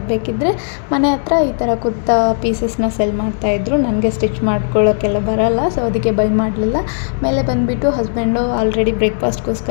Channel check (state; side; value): silent; right; digital silence